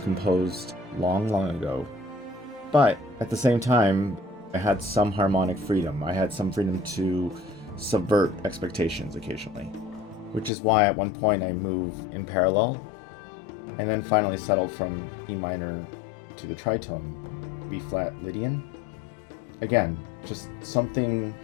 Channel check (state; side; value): drops out; right; at 10.5 s